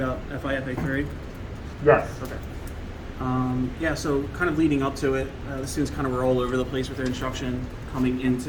FIFA3? Yes. Okay. Yeah, so kind of leading up to it, the students kind of were all over the place with their instruction coming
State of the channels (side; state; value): both; identical; correlation 1.00